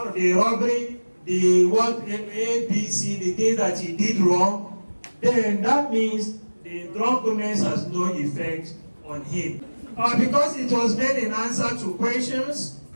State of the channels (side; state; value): both; inverted; correlation -1.00